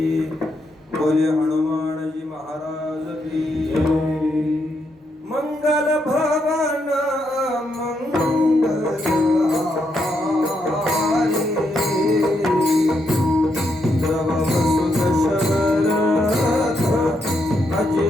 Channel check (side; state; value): both; normal; correlation 0.79